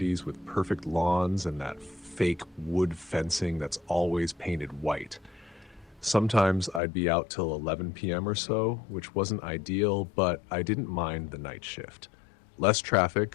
with perfect lawns and that fake wood fencing that's always painted white. Sometimes I'd be out till 11 p.m. or so, which wasn't ideal, but I didn't mind the night shift. Less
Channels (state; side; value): drops out; right; at 6.8 s